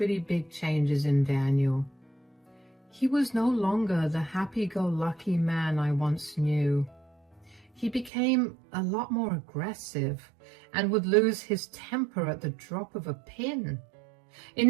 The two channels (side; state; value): left; drops out; at 8.1 s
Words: big changes in Daniel. He was no longer the happy-go-lucky man I once knew. He became a lot more aggressive and would lose his temper at the drop of a pin.